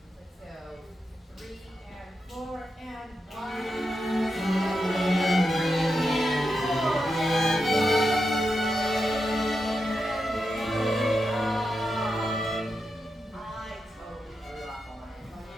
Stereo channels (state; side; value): normal; both; correlation 0.87